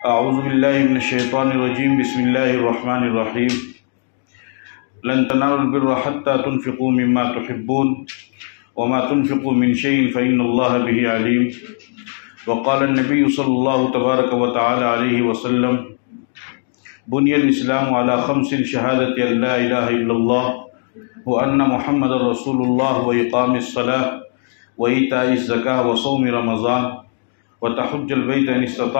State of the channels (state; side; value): silent; right; digital silence